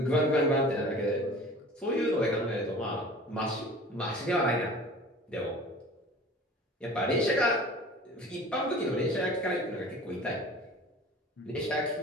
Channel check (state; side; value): normal; both; correlation 0.42